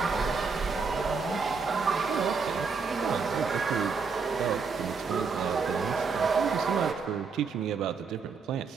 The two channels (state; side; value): quieter; left; 5.1 dB